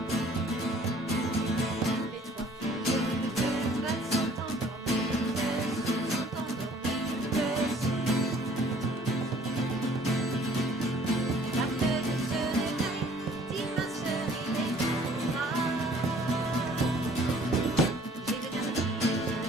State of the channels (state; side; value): normal; both; correlation 0.56